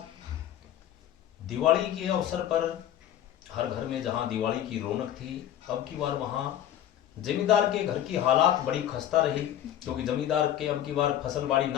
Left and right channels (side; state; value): right; quieter; 11.3 dB